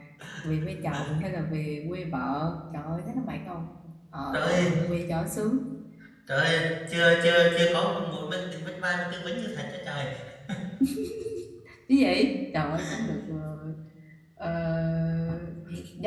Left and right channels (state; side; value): identical; both; correlation 1.00